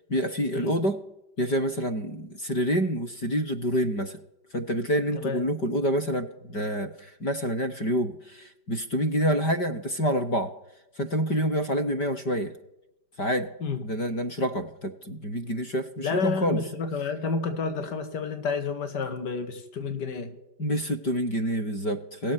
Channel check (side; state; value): right; late; 5.1 ms